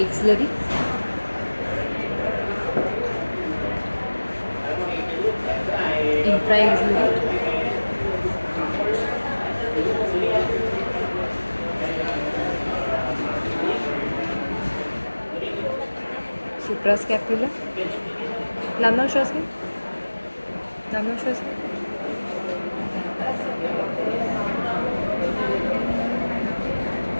Axillary. Infra-axillary. Suprascapular. लांब लांब श्वास घ्या. लांब लांब श्वास घ्या.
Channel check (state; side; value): inverted; both; correlation -1.00